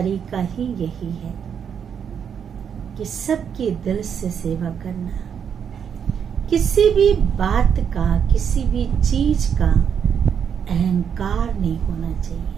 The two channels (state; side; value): quieter; left; 7.7 dB